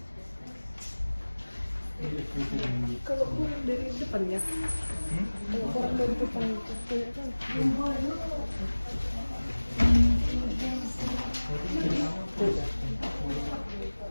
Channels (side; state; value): both; inverted; correlation -1.00